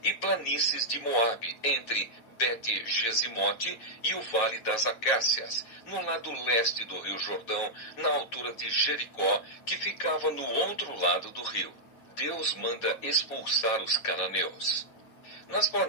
e planícies de Moabe, entre Bet-Gesimote e o Vale das Acácias, no lado leste do rio Jordão, na altura de Jericó, que ficava no outro lado do rio. Deus manda expulsar os cananeus. Nas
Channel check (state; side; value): late; right; 9.1 ms